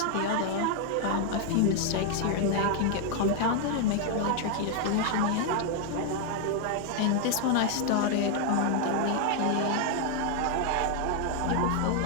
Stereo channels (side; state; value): both; different; correlation 0.00